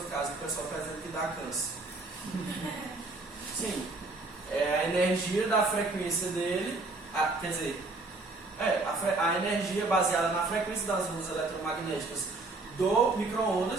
casa, o pessoal está dizendo que dá câncer. Sim. É a energia da frequência dele, a energia baseada na frequência das ondas eletromagnéticas do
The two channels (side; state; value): left; quieter; 3.3 dB